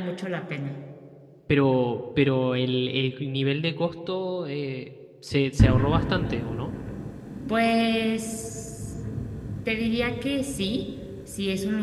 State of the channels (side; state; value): both; identical; correlation 1.00